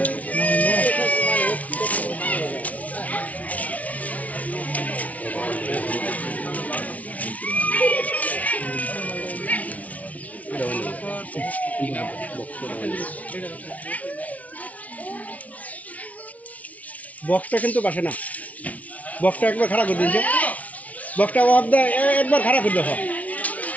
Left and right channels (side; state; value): right; late; 0.069 ms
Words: বক্সটা কিন্তু বাসে না, বক্সটা একবার খারাপ করে দিয়েছে, বক্সটা একবার খারাপ করে দেখো,